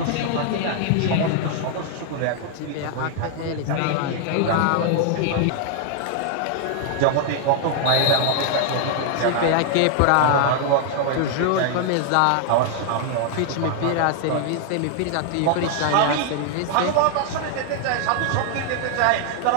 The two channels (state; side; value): different; both; correlation 0.00